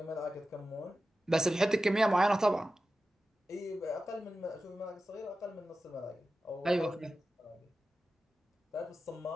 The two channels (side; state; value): both; normal; correlation 0.93